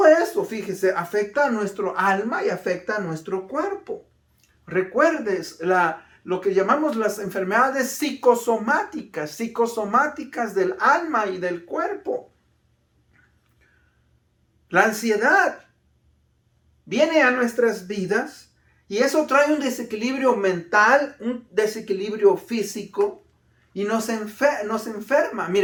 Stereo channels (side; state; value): both; identical; correlation 1.00